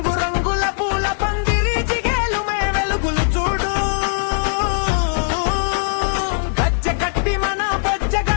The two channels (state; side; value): silent; right; digital silence